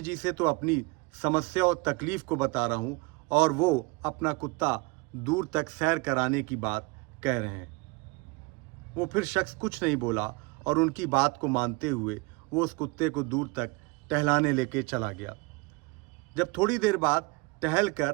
जी से तो अपनी समस्या और तकलीफ को बता रहा हूँ और वो अपना कुत्ता दूर तक सैर कराने की बात कह रहे हैं। वो फिर शख्स कुछ नहीं बोला और उनकी बात को मानते हुए वो उस कुत्ते को दूर तक टहलाने लेके चला गया। जब थोड़ी देर बाद टहल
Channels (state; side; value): quieter; left; 25.9 dB